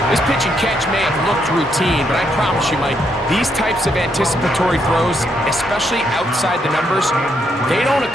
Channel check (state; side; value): normal; both; correlation 0.76